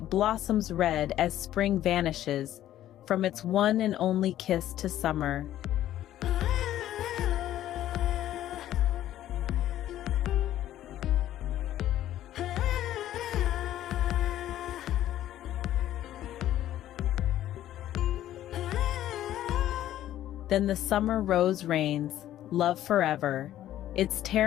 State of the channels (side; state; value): right; quieter; 12.7 dB